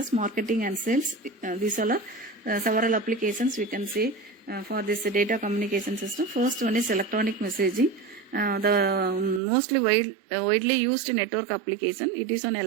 marketing and sales. These all are several applications we can say for this data communication system. First one is electronic messaging. The mostly widely used network application. It is on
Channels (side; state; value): left; drops out; at 9.4 s